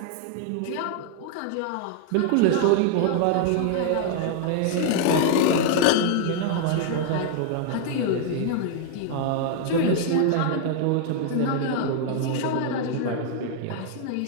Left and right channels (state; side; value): different; both; correlation 0.00